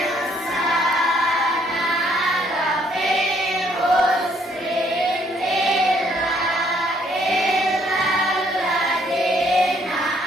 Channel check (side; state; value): both; normal; correlation 0.67